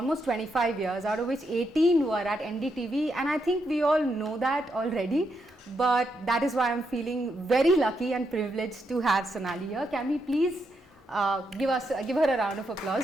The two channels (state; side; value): normal; both; correlation 0.81